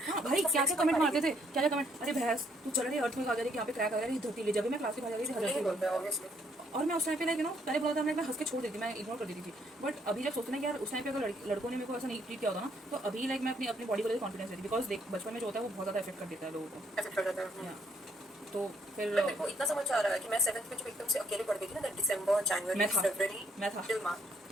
हाँ भाई क्या कमेंट मारते थे, क्या कमेंट, अरे भैंस तू चल रही है अर्थ में, आ जा रही है यहाँ पे क्रैक आ रहा है धरती ले, जब भी मैं क्लास के बाहर जा रही थी। और मैं उस टाइम पे लाइक पहले बोला था मैं हंस के छोड़ देती, मैं इग्नोर कर देती थी। बट अभी जब सोचते ना यार उस टाइम पे अगर लड़कों ने मेरे को ऐसा नहीं ट्रीट किया होता ना, तो अभी लाइक मैं अपनी बॉडी को लेकर कॉन्फिडेंस देती, बिकॉज देख बचपन में जो होता है वो बहुत ज़्यादा इफेक्ट कर देता है लोगों को। तो फिर मेरे को इतना समझ आ रहा है कि मैं 7th में जब एकदम से अकेले पढ़ गई थी ना, दिसंबर जनवरी फरवरी मैं था टिल मार्च,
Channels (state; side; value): normal; both; correlation 0.70